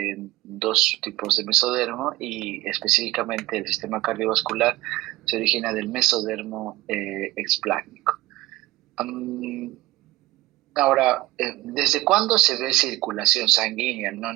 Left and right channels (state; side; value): quieter; left; 17.9 dB